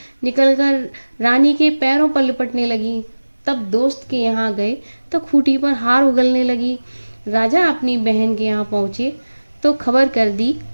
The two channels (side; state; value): both; inverted; correlation -1.00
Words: निकलकर रानी के पैरों पर लिपटने लगी। तब दोस्त के यहाँ गए तो खूंटी पर हार उगलने लगी। राजा अपनी बहन के यहाँ पहुँचे तो खबर कर दी